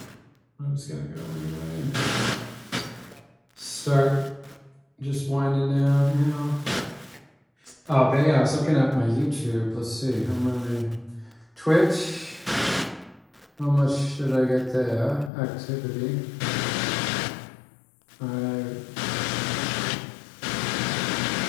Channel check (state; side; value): drops out; right; at 15.3 s